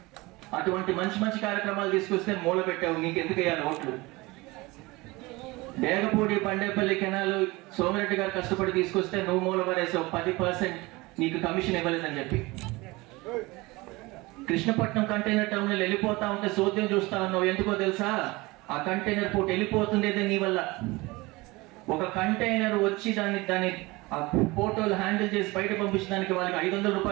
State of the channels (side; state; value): left; quieter; 22.5 dB